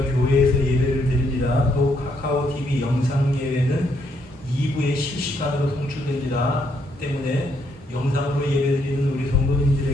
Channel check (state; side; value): normal; both; correlation 0.73